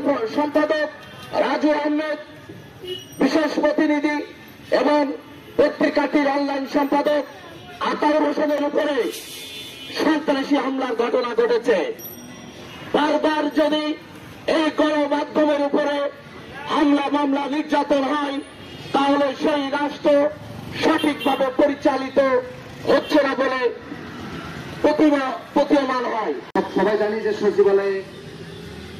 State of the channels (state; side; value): identical; both; correlation 1.00